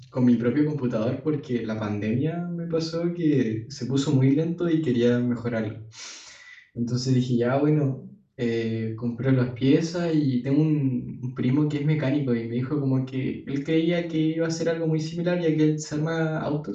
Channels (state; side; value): identical; both; correlation 1.00